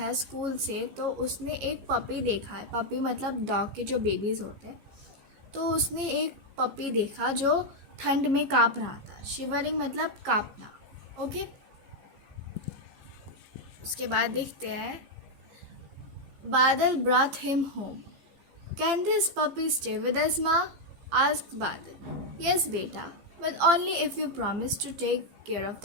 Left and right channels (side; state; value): left; late; 15 ms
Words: स्कूल से तो उसने एक पपी देखा है। पपी मतलब डॉग के जो बेबीज़ होते हैं। तो उसने एक पपी देखा जो ठंड में काँप रहा था। शिवरिंग मतलब काँपना। ओके, उसके बाद देखते हैं। बादल brought him home. Can this puppy stay with us, Ma? asked Badal. Yes, beta, but only if you promise to take care of